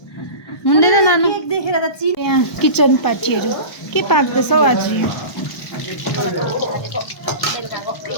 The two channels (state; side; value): late; right; 1.0 ms